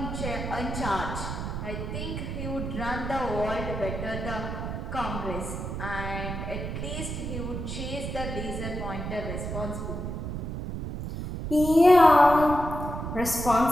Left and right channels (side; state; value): right; noise; rumble, 5 dB below the sound